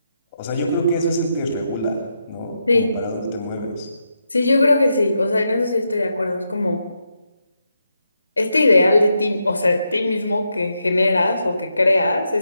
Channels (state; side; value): inverted; both; correlation -0.84